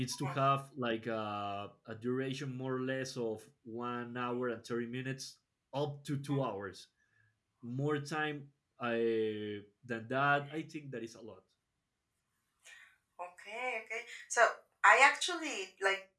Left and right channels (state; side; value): identical; both; correlation 1.00